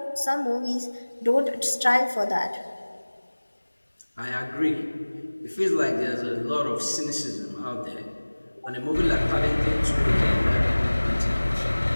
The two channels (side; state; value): both; inverted; correlation -1.00